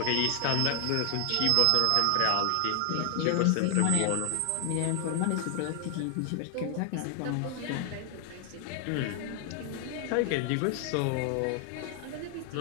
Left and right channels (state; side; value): different; both; correlation 0.00